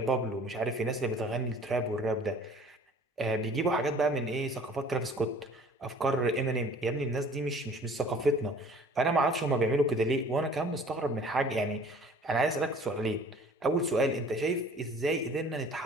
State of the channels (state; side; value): normal; both; correlation 0.50